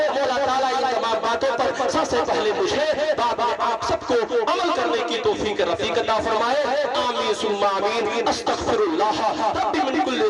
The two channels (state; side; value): identical; both; correlation 1.00